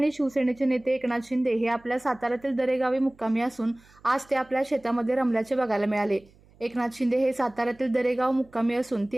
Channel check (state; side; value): noise; right; hum, 28 dB below the sound